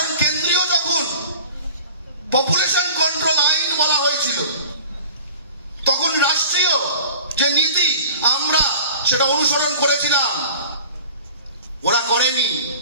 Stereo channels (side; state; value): both; inverted; correlation -0.44